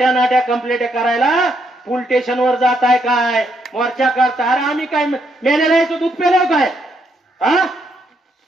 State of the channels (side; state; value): both; normal; correlation 0.76